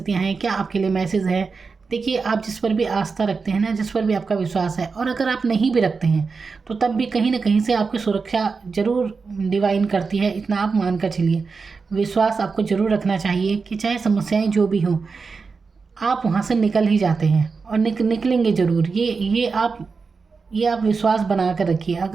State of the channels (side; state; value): left; quieter; 4.8 dB